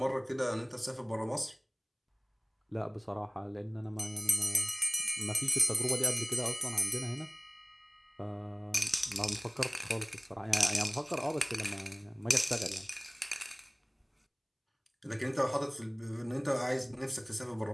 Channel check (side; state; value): both; identical; correlation 1.00